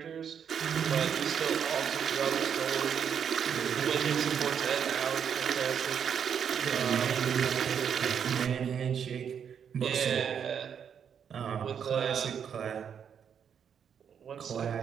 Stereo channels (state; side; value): quieter; left; 7.8 dB